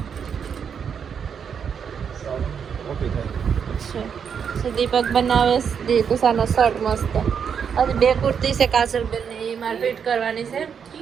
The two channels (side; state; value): left; quieter; 7.2 dB